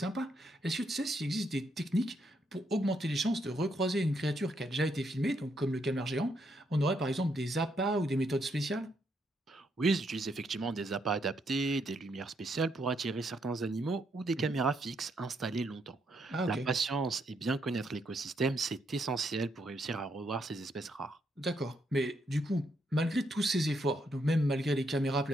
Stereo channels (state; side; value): normal; both; correlation 0.76